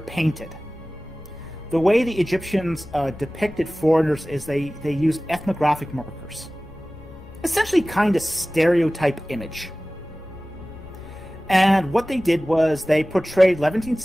The way the Egyptians depicted foreigners is they used ethnographic markers. Essentially kind of stereotype image. And what they did was they portrayed Levantine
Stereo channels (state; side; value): noise; left; rumble, 19 dB below the sound